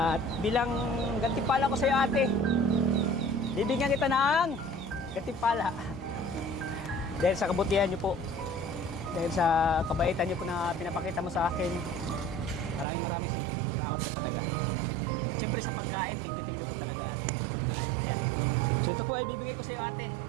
bilang gantimpala ko sa iyo, ate, bibigyan kita ng gantimpala. Dahil sa kabutihan niyo po, dahil sa kabaitan niyo po na pinapakita mo sa akin, maraming salamat po talaga. At siyempre sa pagkain, thank you po talaga, ate, sa pagkain. Ayan. So ito po ay bibigay ko sa iyo, ate.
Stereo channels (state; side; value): drops out; left; at 12.9 s